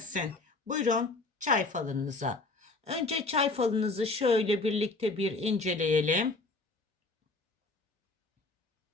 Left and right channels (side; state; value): right; quieter; 3.3 dB